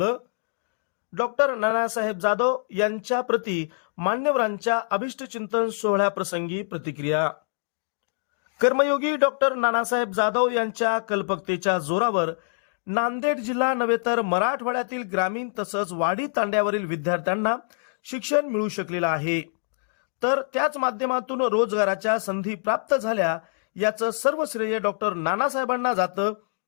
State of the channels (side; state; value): right; silent; digital silence